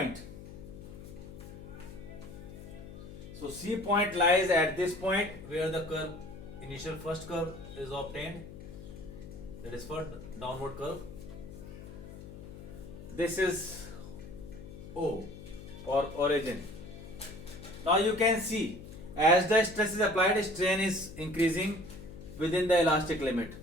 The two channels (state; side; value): noise; left; hum, 14 dB below the sound